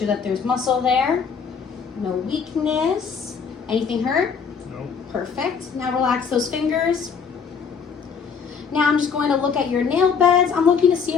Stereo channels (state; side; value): quieter; right; 6.2 dB